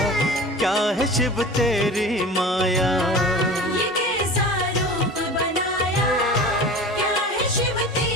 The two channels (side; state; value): both; normal; correlation 0.37